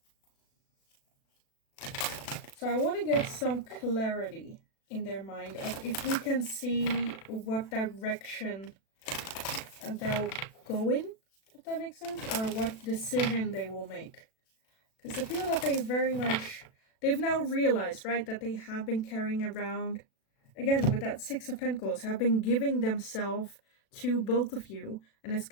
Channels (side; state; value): right; late; 36 ms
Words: So I want to get some clarity in their mind of if we can see what direction they'll go in, if that makes sense, or what decision they will make. Because I feel that they've now realized, right, that they have been carrying around, again, with that Six of Pentacles, have been giving themselves to both of you. And it's